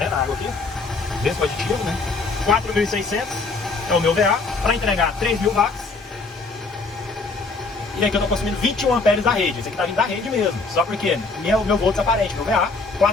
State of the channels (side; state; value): right; quieter; 3.9 dB